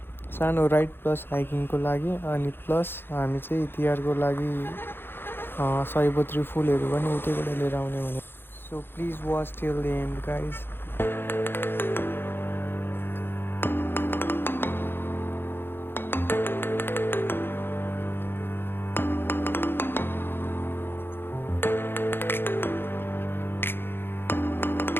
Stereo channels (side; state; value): right; late; 0.10 ms